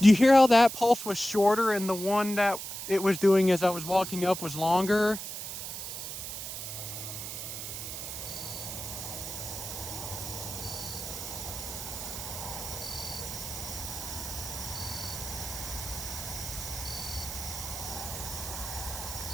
Do you hear how that pulse was shorter and the one that it was doing as I was walking up was longer?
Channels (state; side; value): noise; right; hiss, 7 dB below the sound